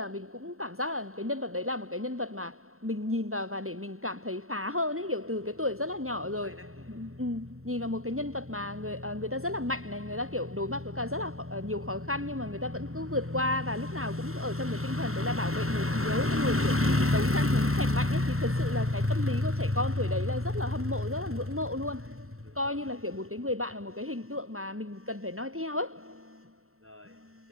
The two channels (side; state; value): left; late; 0.63 ms